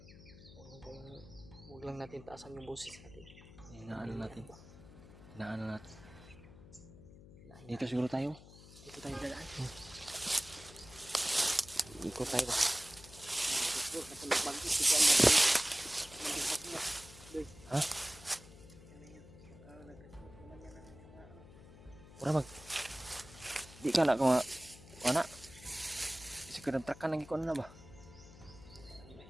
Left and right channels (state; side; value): noise; left; hum, 19 dB below the sound